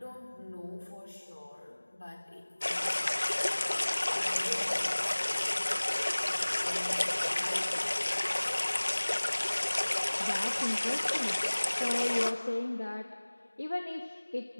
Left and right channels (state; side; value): inverted; both; correlation -1.00